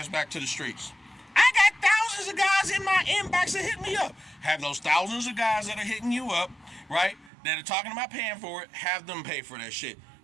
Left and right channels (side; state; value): left; drops out; at 7.3 s